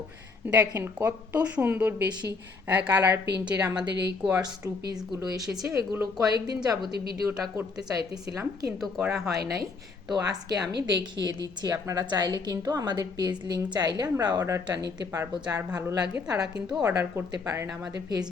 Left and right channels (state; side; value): quieter; right; 4.4 dB